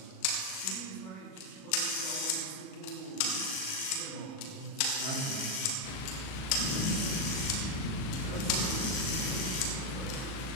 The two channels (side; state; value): right; late; 37 ms